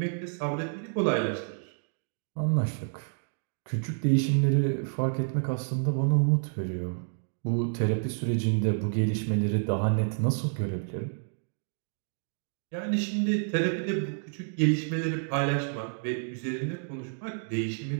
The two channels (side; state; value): left; silent; digital silence